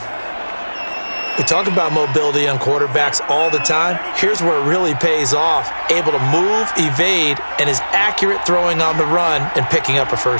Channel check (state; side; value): inverted; both; correlation -1.00